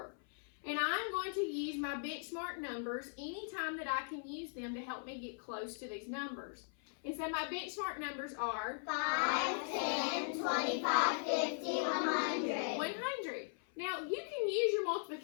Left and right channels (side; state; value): right; silent; 52 dB below the other